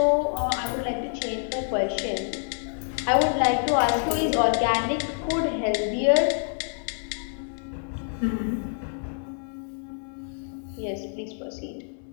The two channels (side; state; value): right; silent; 59 dB below the other